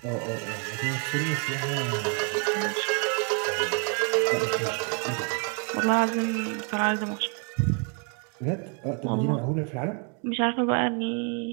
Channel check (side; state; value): left; quieter; 37.7 dB